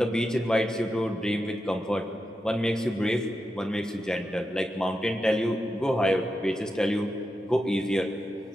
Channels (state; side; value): normal; both; correlation 0.88